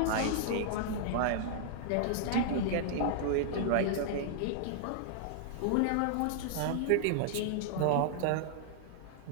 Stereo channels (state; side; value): different; both; correlation -0.01